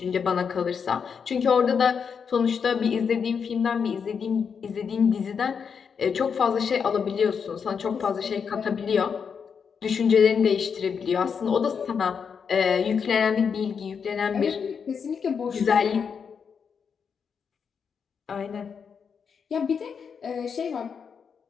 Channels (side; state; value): right; quieter; 6.5 dB